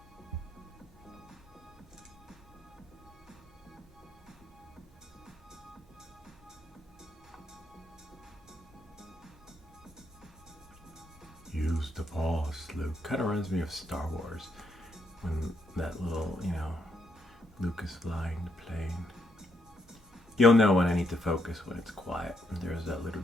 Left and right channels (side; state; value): both; normal; correlation 0.77